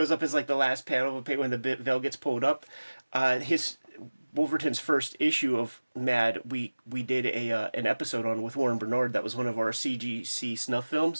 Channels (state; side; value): inverted; both; correlation -1.00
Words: up as like the last panel of a page when the veil gets pulled up. His Wolverton's first issue of Mad, we did an episode on with Warren Bernard. That was one of our CGC snuff